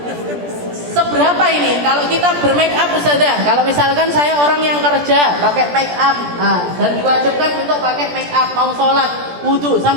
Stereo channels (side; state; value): left; late; 17 ms